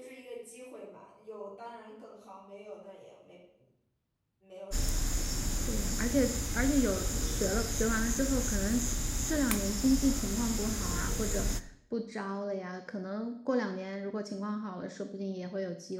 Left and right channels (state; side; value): identical; both; correlation 1.00